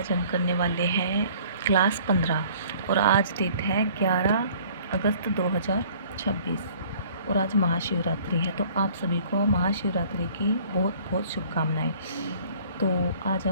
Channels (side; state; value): both; inverted; correlation -0.53